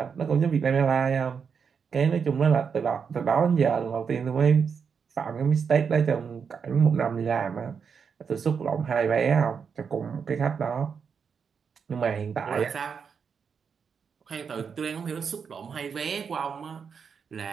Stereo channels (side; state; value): left; quieter; 6.3 dB